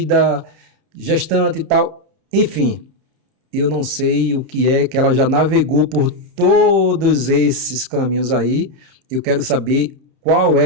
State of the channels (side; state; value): left; late; 31 ms